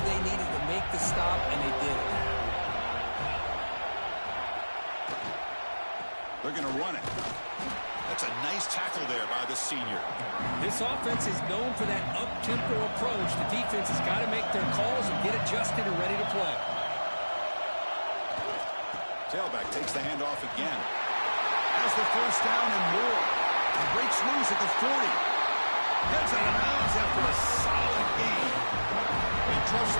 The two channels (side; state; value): both; inverted; correlation -1.00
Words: they needed to make the stop, and they did it. They're going to run it. That's a nice tackle there by the senior. This offense is known for that up-tempo approach. The defense has got to make their calls and get adjusted and ready to play. Tailback takes the handoff again. Has the 1st down and more. He breaks loose at the 40. Heads out of bounds after a solid gain. They trust